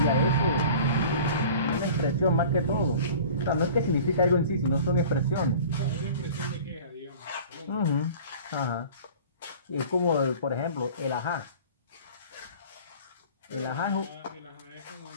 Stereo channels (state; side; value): inverted; both; correlation -0.43